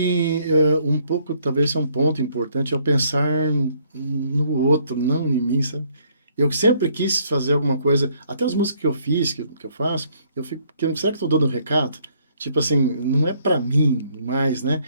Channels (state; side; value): inverted; both; correlation -0.66